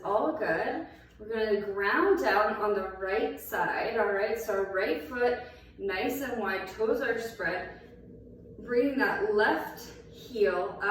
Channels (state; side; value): identical; both; correlation 1.00